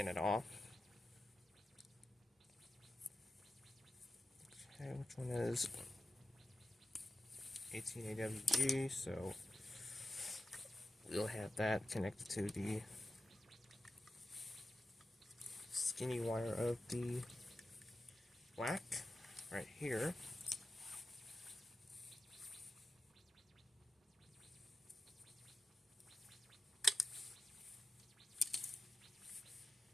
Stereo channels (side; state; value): both; normal; correlation 0.92